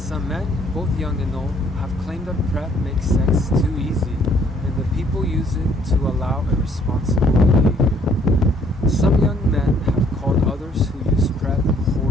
Some men, both young and old, have claimed that PrEP makes sex too easy and that people use it to allow irresponsible behavior. Some young men have called others who use PrEP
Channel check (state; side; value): normal; both; correlation 0.63